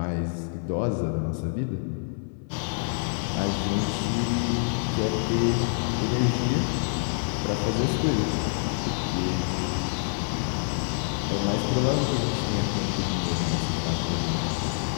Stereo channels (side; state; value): right; silent; 60 dB below the other